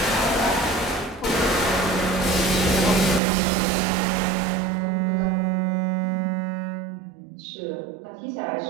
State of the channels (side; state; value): left; drops out; at 3.2 s